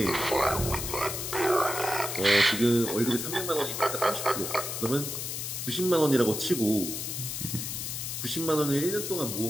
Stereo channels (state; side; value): noise; left; hiss, 4 dB below the sound